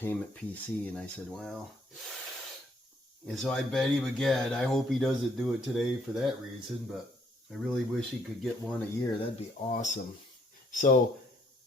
PC. And I said, well... And so I bet him again. I hope he doesn't do it today for that reason, but I really wish he could get one a year. That'd be awesome. So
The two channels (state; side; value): normal; both; correlation 0.67